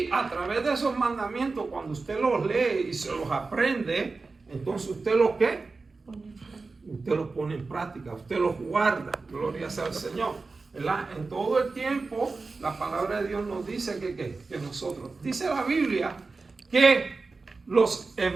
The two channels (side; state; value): left; quieter; 4.0 dB